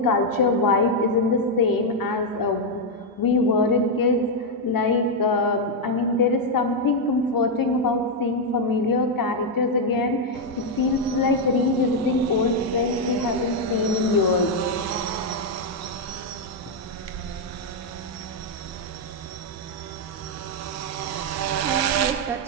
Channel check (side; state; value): both; normal; correlation 0.00